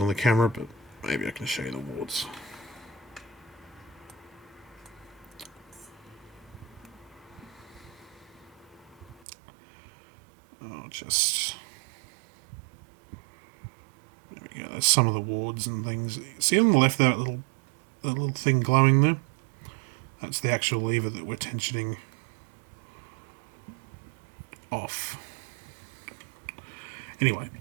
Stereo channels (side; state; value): left; drops out; at 9.2 s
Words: the camera, but maybe I can show you the wards. I'll just... There we go, there's some of the wards and things. See on the left there, that little thing glowing there? That's the actual lever that we're tensioning off. Anyway,